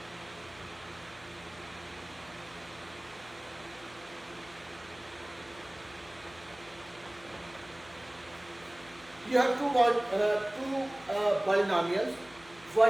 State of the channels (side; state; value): left; noise; hum, 23 dB below the sound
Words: You have two polynomials.